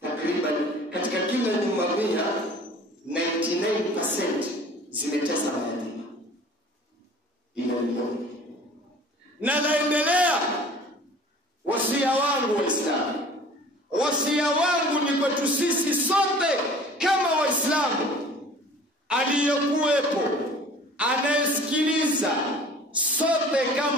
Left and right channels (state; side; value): normal; both; correlation 0.47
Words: katika kila nyumba 99% zimetesa mayatima. Inaonekana na naendelea. Wasia wangu Waislamu, wasia wangu ni kwetu sisi sote kama Waislamu, aliyekuwepo, anayesikiliza, sote